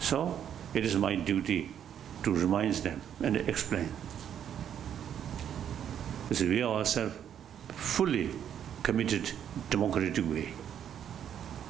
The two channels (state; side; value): quieter; left; 9.3 dB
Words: So it is my duty to remind them and explain. So we are ourselves fully committed democratic way.